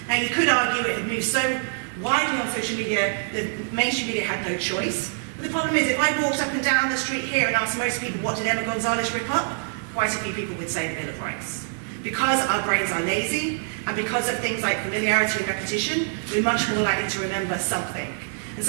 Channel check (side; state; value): left; silent; digital silence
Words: Now you could argue it had moved so widely on social media, the mainstream media had no choice. But the problem is, if I walked up and down the street here and asked most people, what did Emma Gonzalez rip up? Quite a few people would say the Bill of Rights. Because our brains are lazy, and because of things like familiarity and repetition, we're much more likely to remember something. And